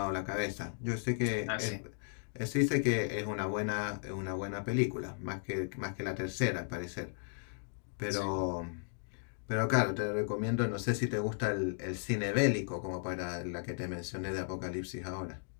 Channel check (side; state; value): right; silent; digital silence